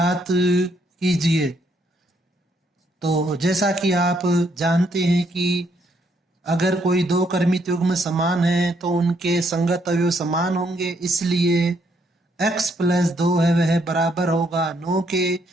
कीजिए। तो जैसा कि आप जानते हैं कि अगर कोई दो क्रमित युग्म समान है तो उनके संगत अवयव समान होंगे, इसलिए x प्लस 2 है वह बराबर होगा 9 के।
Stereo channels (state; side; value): normal; both; correlation 0.72